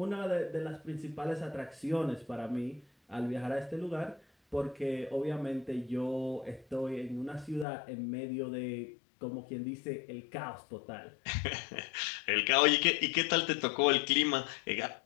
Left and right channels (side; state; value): right; drops out; at 7.7 s